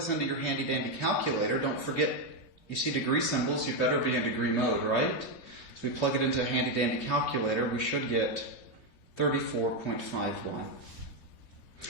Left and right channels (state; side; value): late; right; 3.1 ms